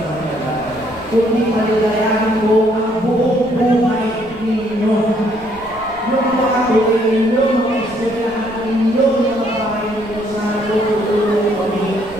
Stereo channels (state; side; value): noise; right; rumble, 22 dB below the sound